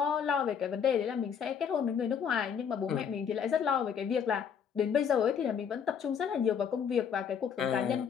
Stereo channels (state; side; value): quieter; right; 7.4 dB